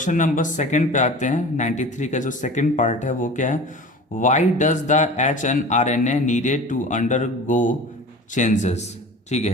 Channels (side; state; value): both; normal; correlation 0.38